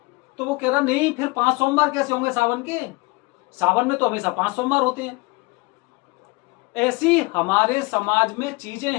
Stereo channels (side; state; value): right; quieter; 25.7 dB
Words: तो वो कह रहा नहीं, फिर 5 सोमवार कैसे होंगे सावन के। सावन में तो हमेशा 5 सोमवार होते हैं। ऐसी हमारे समाज में चीजें